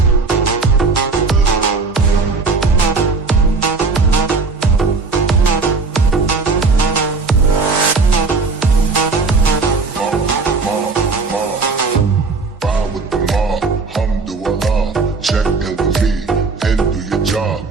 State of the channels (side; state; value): left; quieter; 4.1 dB